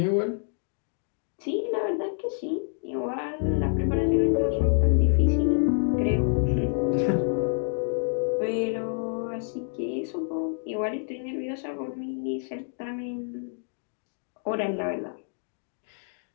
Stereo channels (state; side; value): silent; right; 60 dB below the other